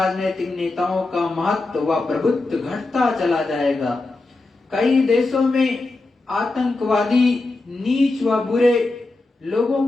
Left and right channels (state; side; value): quieter; right; 3.2 dB